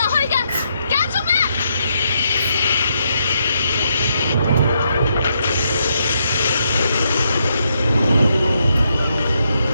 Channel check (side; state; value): both; inverted; correlation -0.78